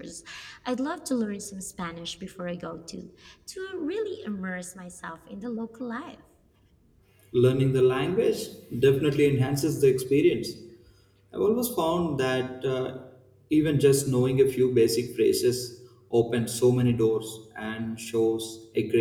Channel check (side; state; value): both; identical; correlation 1.00